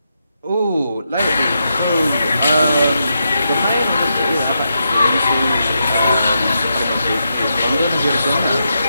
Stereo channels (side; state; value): both; inverted; correlation -0.84